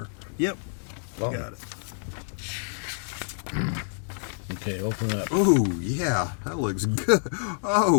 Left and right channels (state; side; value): silent; right; digital silence